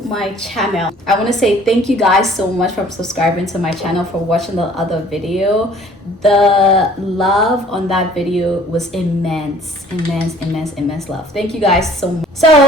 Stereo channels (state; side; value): normal; both; correlation 0.53